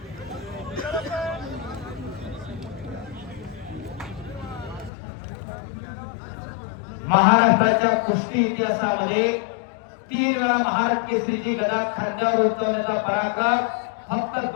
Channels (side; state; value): right; drops out; at 4.9 s